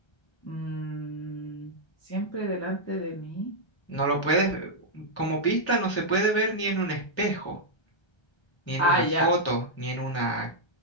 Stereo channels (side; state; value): right; late; 1.3 ms